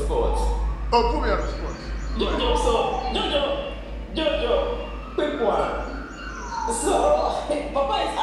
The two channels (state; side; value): identical; both; correlation 1.00